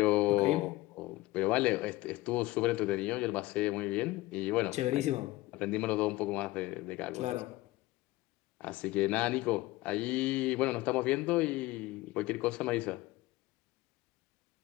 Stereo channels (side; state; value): right; quieter; 19.0 dB